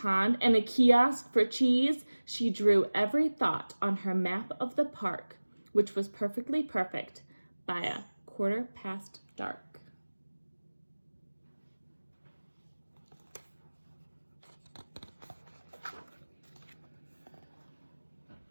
and a kiosk for cheese. She drew every thought on her map of the park, which was perfectly perfect by dark.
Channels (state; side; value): inverted; both; correlation -1.00